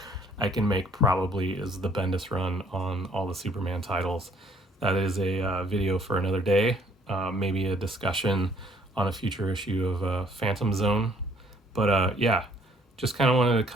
I can make probably is the Bendis run on all the Superman titles. That is a video for another day, maybe a discussion on a future issue of Phantom Zone. But yeah, just kind of wanted to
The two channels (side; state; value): both; normal; correlation 0.62